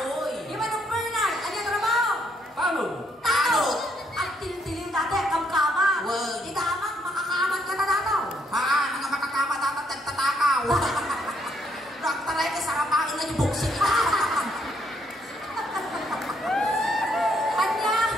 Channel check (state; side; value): normal; both; correlation 0.72